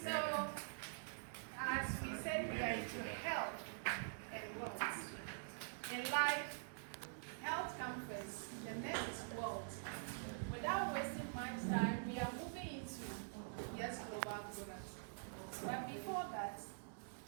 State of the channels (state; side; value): silent; left; digital silence